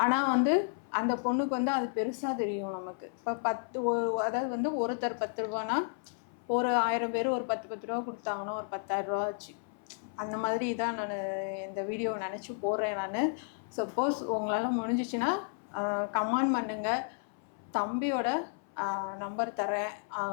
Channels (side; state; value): right; silent; 56 dB below the other